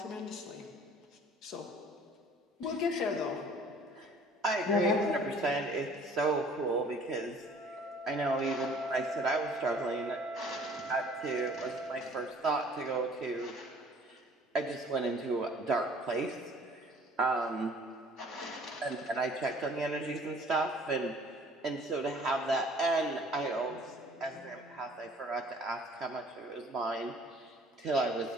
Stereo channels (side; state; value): both; normal; correlation 0.53